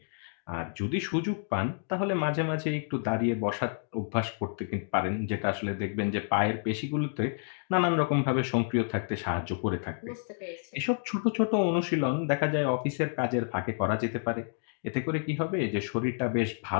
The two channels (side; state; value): right; silent; digital silence